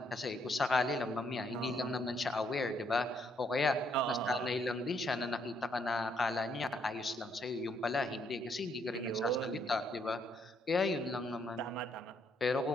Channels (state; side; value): normal; both; correlation 0.72